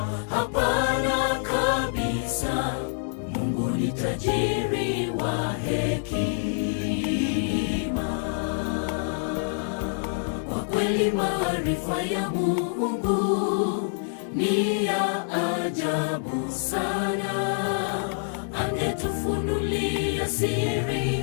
Hapana kabisa. Mungu ni tajiri wa hekima. Kwa kweli maarifa ya Mungu ni ya ajabu sana. Angetufunulia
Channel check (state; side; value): silent; right; digital silence